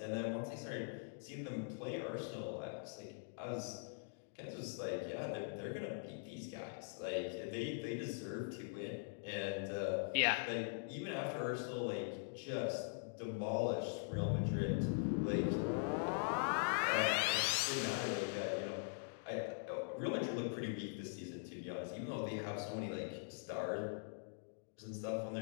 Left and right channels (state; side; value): silent; right; digital silence